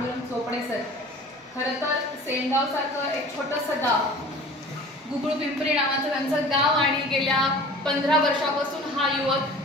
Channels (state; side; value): normal; both; correlation 0.43